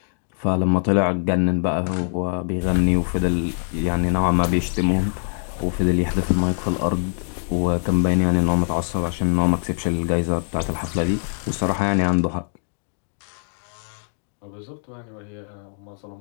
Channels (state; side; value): silent; right; 63 dB below the other